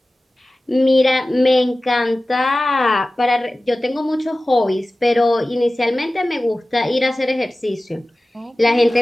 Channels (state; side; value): normal; both; correlation 0.97